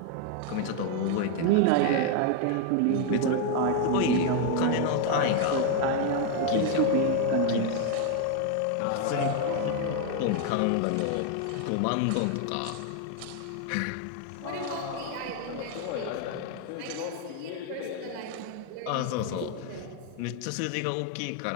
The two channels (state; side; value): different; both; correlation 0.01